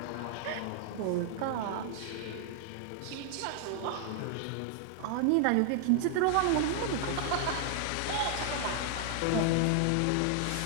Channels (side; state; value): both; different; correlation 0.00